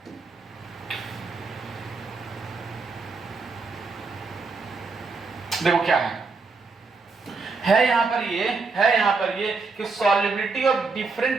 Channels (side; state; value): left; quieter; 4.3 dB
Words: देखो क्या यहाँ पर ये कि सॉल्युबिलिटी ऑफ